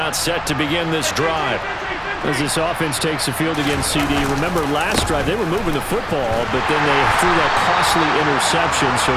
set to begin this drive. As this offense takes the field against CD, remember last drive they were moving the football, but then they threw that costly interception, so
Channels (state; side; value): identical; both; correlation 1.00